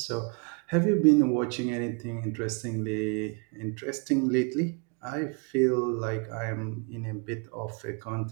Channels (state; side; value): quieter; left; 34.9 dB